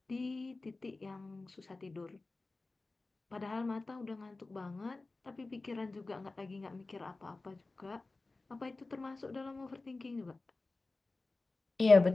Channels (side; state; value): right; quieter; 3.4 dB